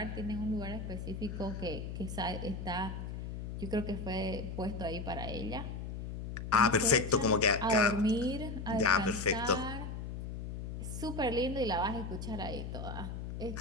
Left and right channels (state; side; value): noise; left; hum, 7 dB below the sound